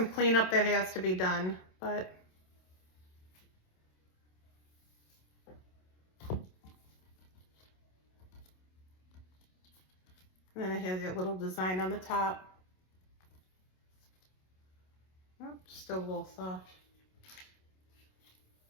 cleanup that has to be done, but and then it has that little design on the top. Oh, still a little soft.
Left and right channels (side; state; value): right; late; 27 ms